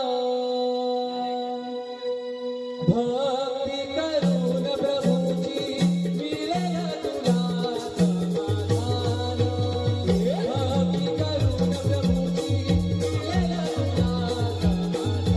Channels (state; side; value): identical; both; correlation 1.00